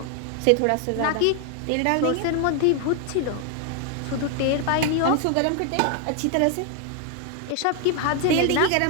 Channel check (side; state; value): both; different; correlation 0.00